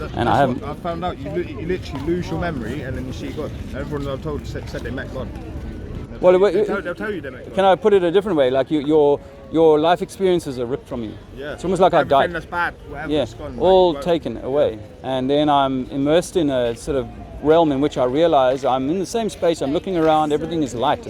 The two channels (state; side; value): identical; both; correlation 1.00